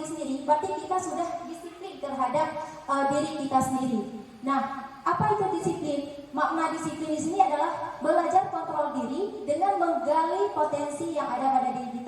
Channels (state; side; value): identical; both; correlation 1.00